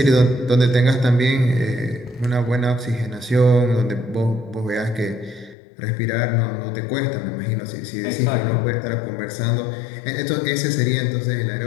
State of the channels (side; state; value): right; drops out; at 5.6 s